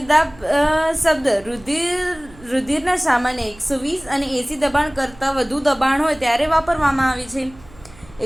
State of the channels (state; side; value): noise; right; hum, 23 dB below the sound